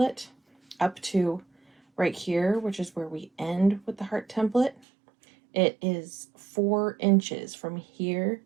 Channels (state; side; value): drops out; left; at 4.8 s